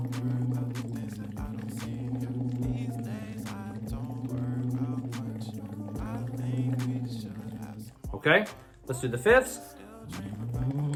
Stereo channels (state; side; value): identical; both; correlation 1.00